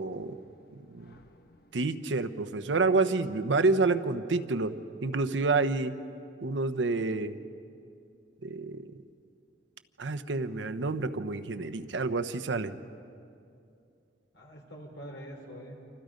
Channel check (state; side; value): quieter; left; 3.0 dB